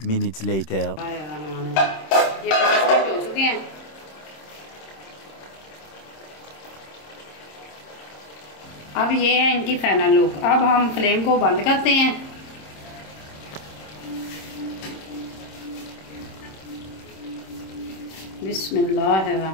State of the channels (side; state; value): right; late; 26 ms